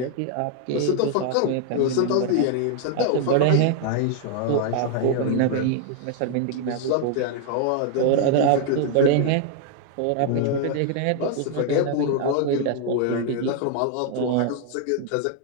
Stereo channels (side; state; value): both; different; correlation 0.00